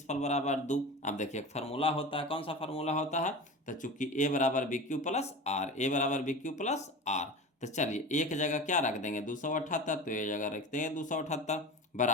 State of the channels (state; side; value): normal; both; correlation 0.31